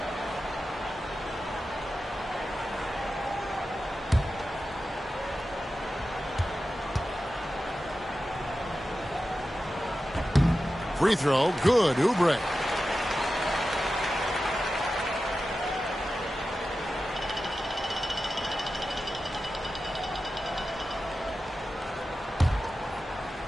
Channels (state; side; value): normal; both; correlation 0.93